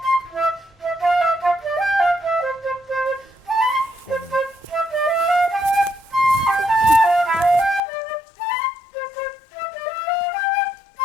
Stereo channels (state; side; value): drops out; right; at 7.8 s